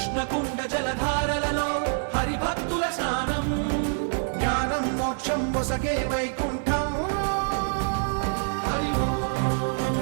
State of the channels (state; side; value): silent; left; 55 dB below the other